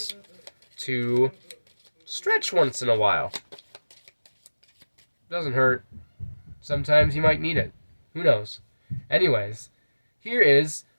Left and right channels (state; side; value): inverted; both; correlation -1.00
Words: to stretch once in a while. Doesn't hurt. Sometimes you might need it. Who knows? Anyways, here is